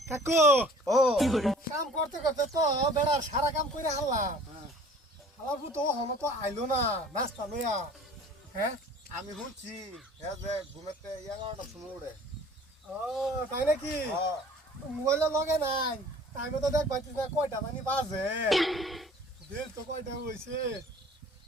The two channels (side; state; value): both; normal; correlation 0.49